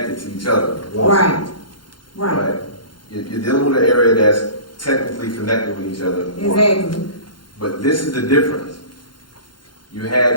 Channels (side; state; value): right; late; 0.72 ms